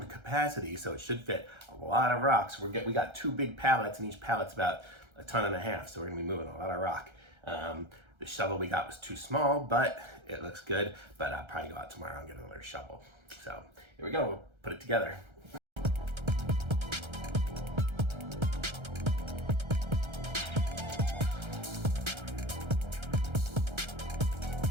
capacity, so it should fit a lot of rocks. We got 2 big pallets and each pallet's about 1.5 tons, so we're gonna be moving a lot of rock. The shovel we got was too small, but it looks good, but I'll probably go out tomorrow and get another shovel. So here we go, we'll put it together.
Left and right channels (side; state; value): left; late; 1.3 ms